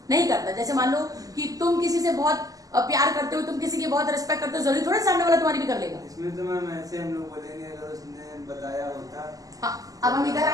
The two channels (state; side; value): late; left; 0.17 ms